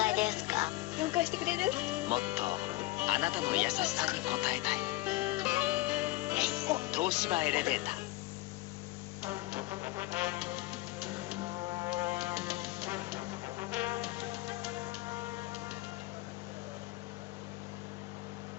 います。何回ですか？4回してくれる？もっとあなたの優しさに応えたい。東芝エレベーター。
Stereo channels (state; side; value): quieter; right; 19.3 dB